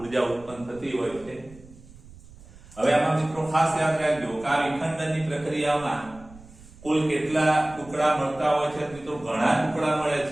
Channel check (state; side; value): noise; right; rumble, 21 dB below the sound